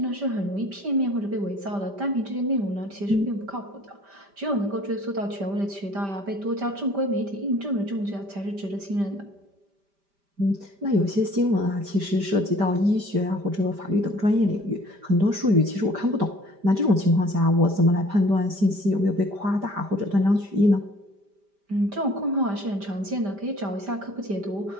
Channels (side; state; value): left; late; 5.1 ms